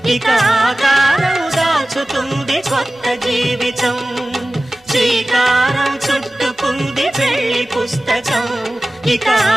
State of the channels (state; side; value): normal; both; correlation 0.96